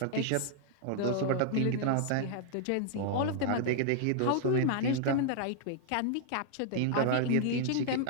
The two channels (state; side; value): different; both; correlation -0.01